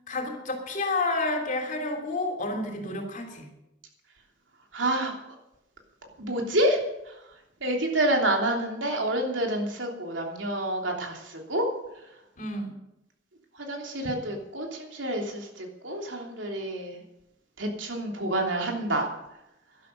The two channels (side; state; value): both; normal; correlation -0.04